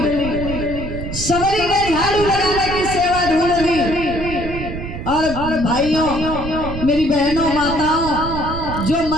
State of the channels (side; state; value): right; noise; rumble, 7 dB below the sound